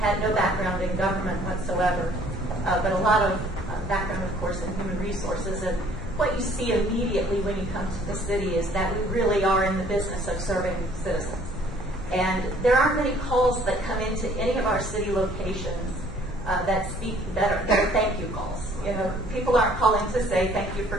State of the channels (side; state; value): both; normal; correlation 0.58